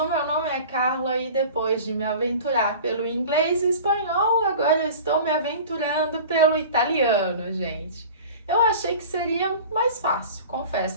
meu nome é Carla e depois de me aventurar pelo inglês e espanhol, agora eu estou me aventurando pelo italiano, gente. Eu achei que seria mais fácil, confesso.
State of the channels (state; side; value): inverted; both; correlation -0.40